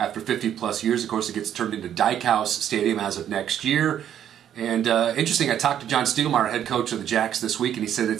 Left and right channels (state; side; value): quieter; left; 10.1 dB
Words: 50-plus years. Of course, it gets turned into Dyke House Stadium as of next year. And interesting, I talked to John Stiegelmeier, head coach of the Jacks, this week, and he said